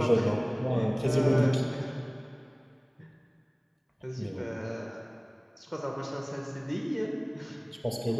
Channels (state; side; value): identical; both; correlation 1.00